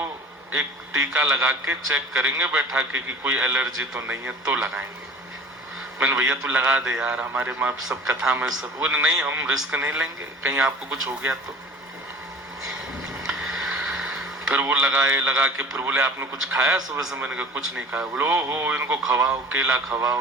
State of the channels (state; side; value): normal; both; correlation 0.42